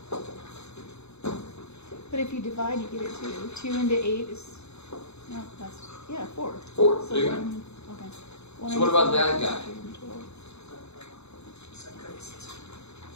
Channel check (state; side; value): late; right; 0.80 ms